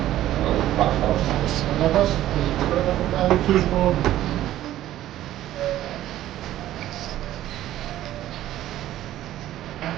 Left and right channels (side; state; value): left; quieter; 13.4 dB